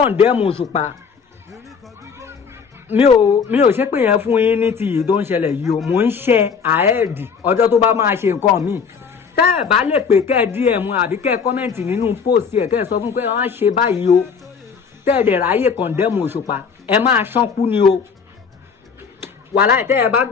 Osupa, mi ò ṣe pé yẹn fún yín ní ti yìí tó ń ṣẹlẹ̀ yìí o, mò ń ṣe ahead ọjọ́ tó bá máa ṣe nǹkan míì. Tẹ́ ẹ bá lè pè kẹ́ ẹ DM àbí kẹ́ ẹ kọ́mẹ̀ntì nínú post ẹ̀, kẹ́ ẹ sọ fún pé wọ́n á ṣe báyìí o, tẹ́ ẹ dẹ̀ ráyè condemn Osupa, ẹ máa ṣánkú ni o. Wàláhì tẹ́ ẹ bá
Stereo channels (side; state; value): right; quieter; 6.0 dB